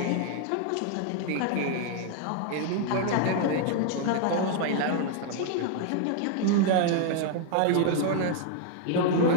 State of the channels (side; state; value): both; different; correlation 0.00